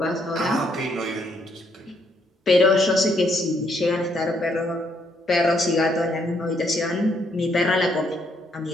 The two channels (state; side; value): normal; both; correlation 0.72